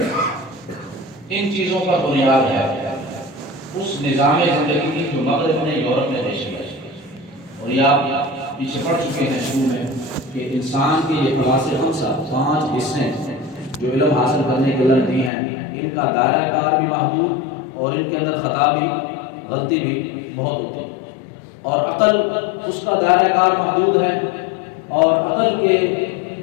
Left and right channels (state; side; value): drops out; right; at 15.3 s